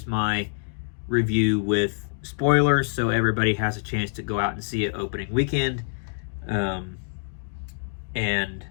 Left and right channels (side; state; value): right; silent; digital silence